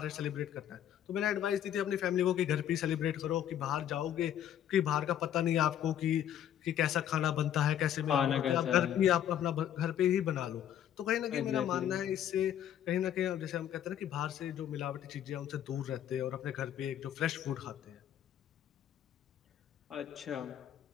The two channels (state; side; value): quieter; right; 10.5 dB